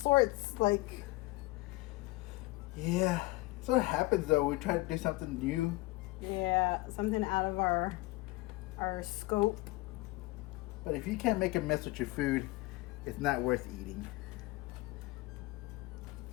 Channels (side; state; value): right; quieter; 21.3 dB